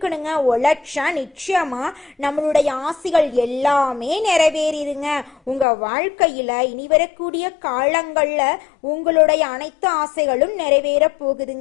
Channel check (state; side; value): drops out; right; at 5.7 s